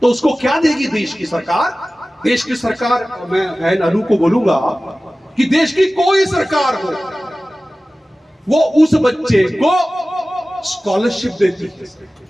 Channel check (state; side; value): normal; both; correlation 0.97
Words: तो उसको क्या देगी देश की सरकार? देश की सरकार, मैं बहन अनु को बोलूंगा कि देश की कोई सरकार हो, वो उस बच्चे को स्कॉलरशिप देती है।